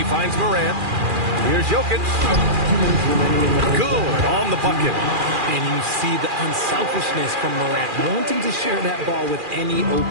finds Morant. Here's Jokic. Good on the bucket. And you see the unselfishness from Morant, wanting to share that ball with any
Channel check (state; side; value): late; left; 2.4 ms